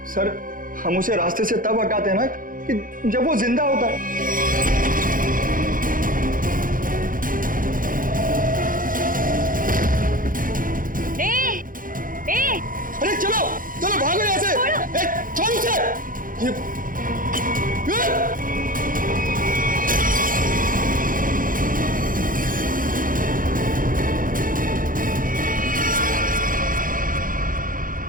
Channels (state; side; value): late; left; 0.40 ms